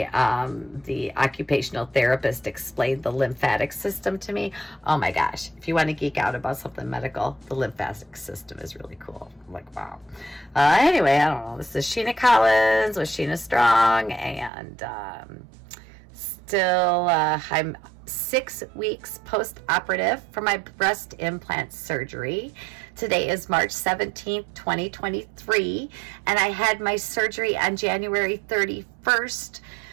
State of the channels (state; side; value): drops out; left; at 14.5 s